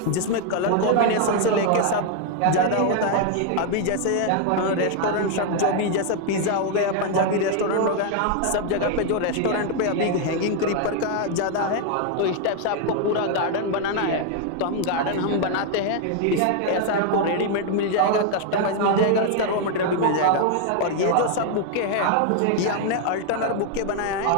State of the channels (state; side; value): different; both; correlation 0.00